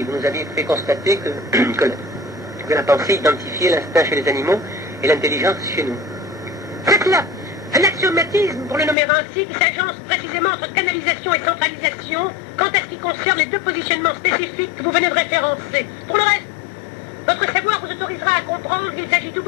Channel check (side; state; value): right; drops out; at 9.0 s